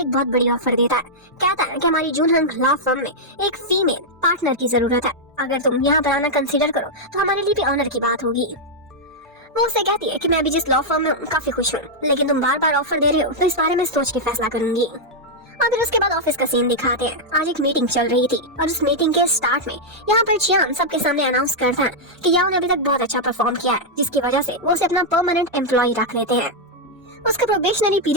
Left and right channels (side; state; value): both; normal; correlation -0.04